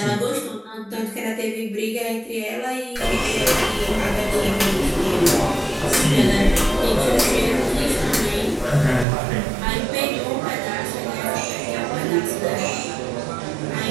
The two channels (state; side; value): drops out; left; at 9.1 s